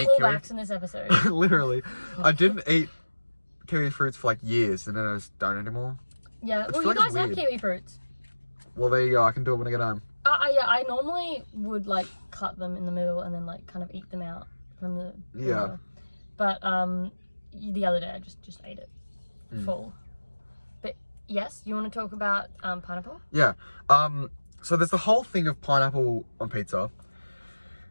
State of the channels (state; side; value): inverted; both; correlation -1.00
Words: eat kiwi. callbacks in this episode. Literally, I didn't eat kiwi fruits for like years, and then I just don't anymore. Yeah, well, feel you like it's guys have weird. kiwi fruits. Well, there you go. I can do it when I get home. Yeah, I normally would like cut them in the middle and then like kind of eat them out from the Yeah. But the other day I just ate it full. But yes, you want to talk about pineapple? Yeah. So there's the whole thing of pineapple on pizza,